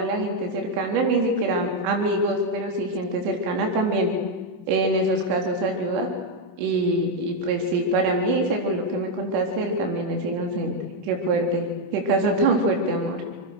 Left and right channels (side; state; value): left; late; 10 ms